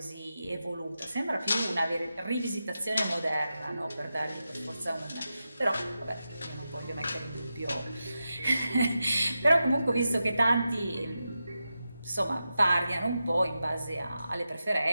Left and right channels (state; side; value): inverted; both; correlation -0.90